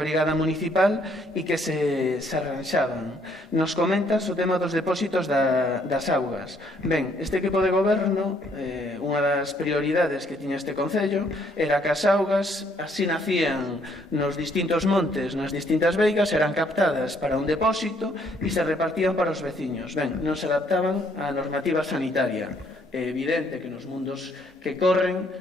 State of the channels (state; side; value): normal; both; correlation 0.67